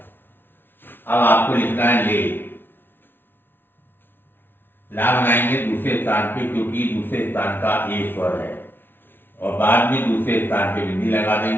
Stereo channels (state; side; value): late; right; 0.10 ms